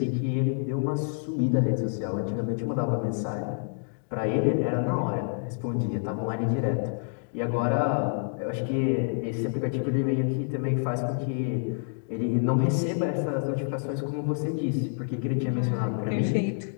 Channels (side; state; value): right; silent; digital silence